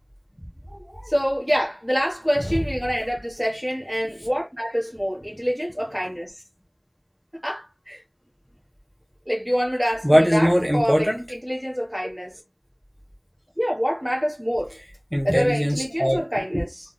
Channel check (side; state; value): both; identical; correlation 1.00